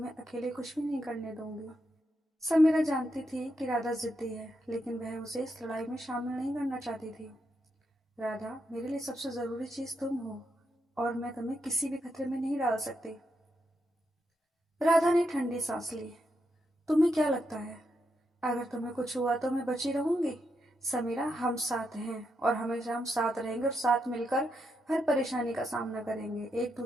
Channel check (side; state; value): both; normal; correlation 0.82